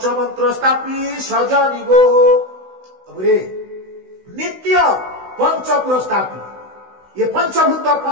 ସ୍ଥାପି ସଜନି ଗୋ। ନିତ୍ୟ पंचपुर स्थापित ये पंचभूत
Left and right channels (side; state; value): left; late; 16 ms